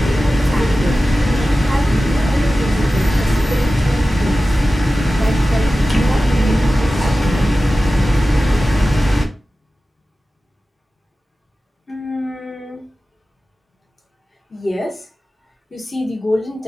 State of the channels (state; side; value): normal; both; correlation 0.95